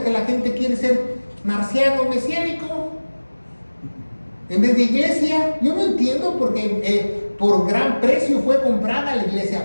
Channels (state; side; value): inverted; both; correlation -1.00